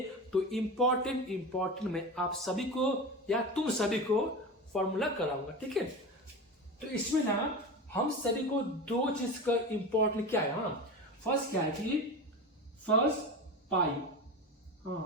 तो इंपॉर्टेंट में आप सभी को या तुम सभी को फॉर्मूला कराऊंगा। ठीक है, तो इसमें ना हम सभी को 2 चीज का इंपॉर्टेंट क्या है, फर्स्ट क्या है कि फर्स्ट पाई,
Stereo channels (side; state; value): both; normal; correlation 0.26